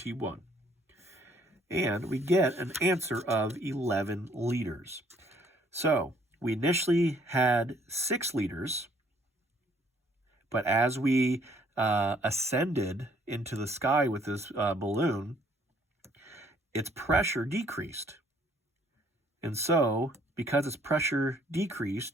And we get an answer of 11 liters. So we initially had 6 liters, but as we ascended into the sky with this balloon, its pressure decreased. And so, because its pressure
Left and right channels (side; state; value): both; normal; correlation 0.63